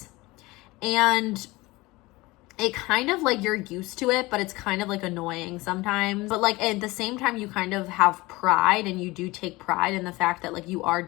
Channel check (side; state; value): right; quieter; 21.3 dB